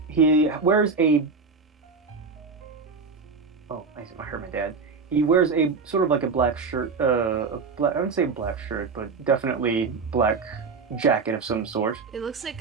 He wears a I heard my dad. He wears a sort of like a black shirt, I wouldn't say black shirt, but definitely black jacket of some sort. It looks like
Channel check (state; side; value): quieter; left; 4.7 dB